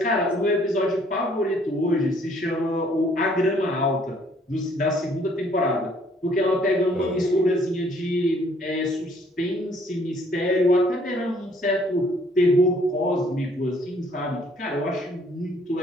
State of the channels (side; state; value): both; normal; correlation 0.62